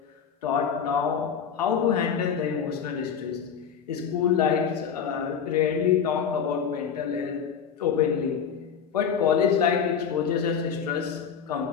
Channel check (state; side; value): quieter; right; 7.3 dB